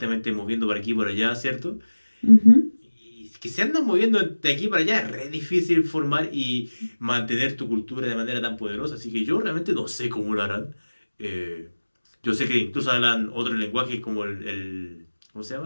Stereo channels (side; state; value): both; inverted; correlation -1.00